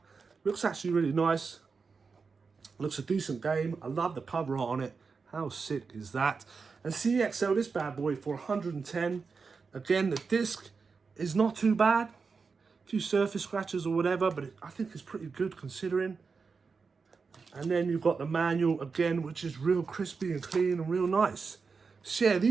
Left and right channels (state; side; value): quieter; left; 5.0 dB